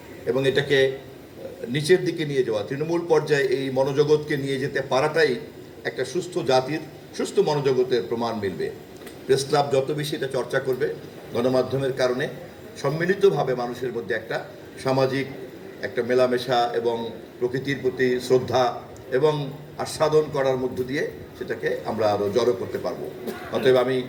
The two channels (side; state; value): both; identical; correlation 1.00